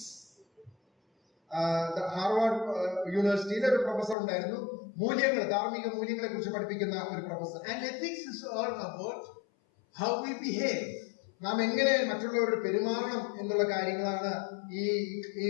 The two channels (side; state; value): right; drops out; at 4.2 s